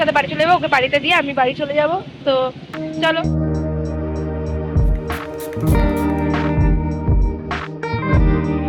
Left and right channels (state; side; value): identical; both; correlation 1.00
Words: বাড়ি চলে যাবো, ওকে বাড়িতে দিয়ে আমি বাড়ি চলে যাব। তো চলো।